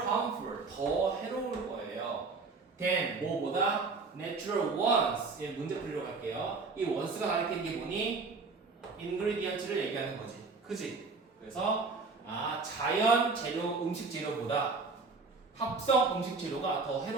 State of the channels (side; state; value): left; quieter; 4.2 dB